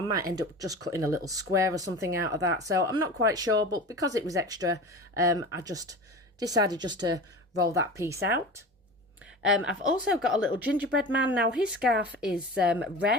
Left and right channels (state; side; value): normal; both; correlation 0.33